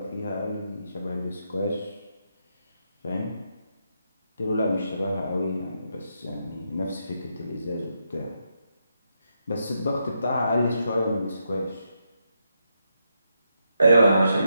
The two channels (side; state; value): both; inverted; correlation -0.82